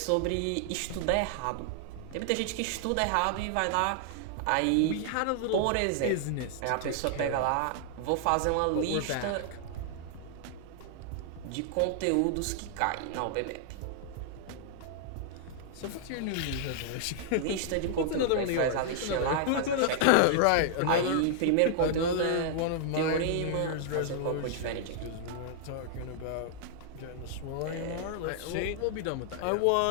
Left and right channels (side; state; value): both; different; correlation -0.01